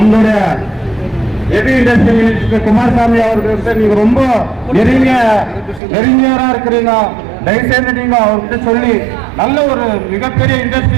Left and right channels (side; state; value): left; drops out; at 5.8 s